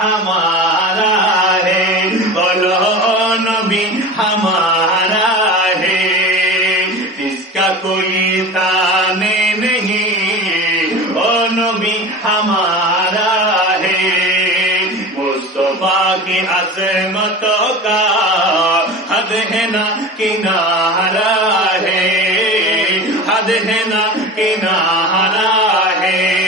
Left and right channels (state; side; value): normal; both; correlation 0.32